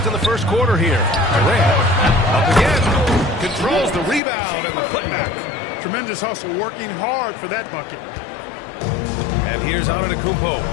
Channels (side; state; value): right; drops out; at 4.2 s